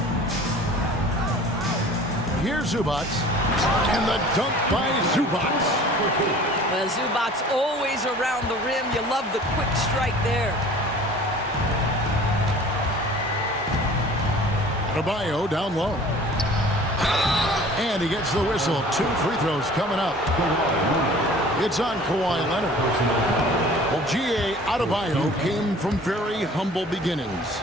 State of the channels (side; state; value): both; normal; correlation 0.46